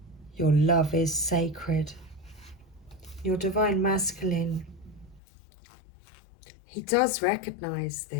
Your love is sacred. Your Divine Masculine, he does recognize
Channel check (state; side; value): drops out; right; at 5.2 s